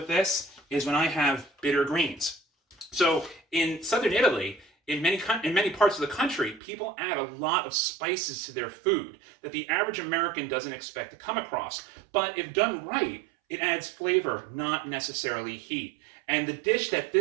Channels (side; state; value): left; drops out; at 6.6 s